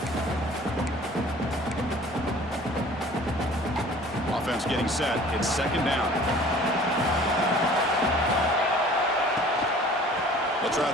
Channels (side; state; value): both; normal; correlation 0.48